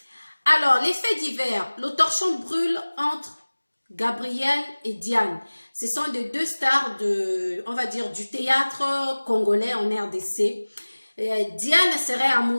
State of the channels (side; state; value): both; inverted; correlation -1.00